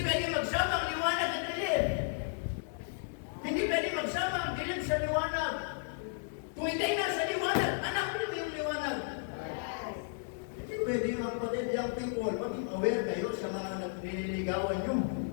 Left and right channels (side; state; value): right; silent; 55 dB below the other